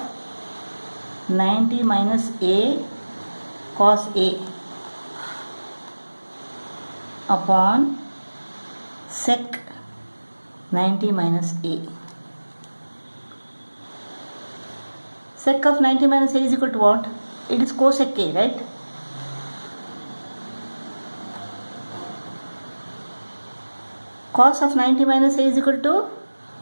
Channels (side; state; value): both; inverted; correlation -1.00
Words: 90 minus A cos A upon sec 90 minus A. Sec of 90 minus A is equal to what? It is cosec A, right? Cos of 90 minus A is equal to,